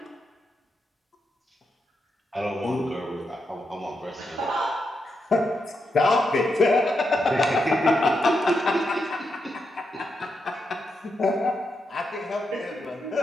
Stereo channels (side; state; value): both; normal; correlation 0.84